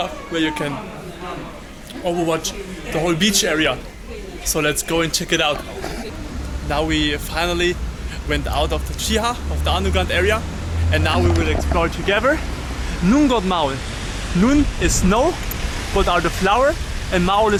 where you can overwatch the whole beach area. So let's go and check it out. Now we finally went out of the Chiha, of the underground area, and now we will explore together Nungot Maul. Nun is snow, but are the flower, and Maul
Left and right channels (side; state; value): both; identical; correlation 1.00